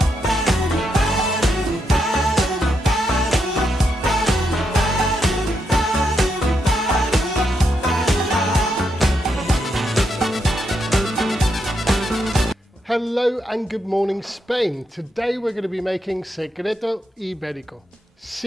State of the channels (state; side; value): normal; both; correlation 0.81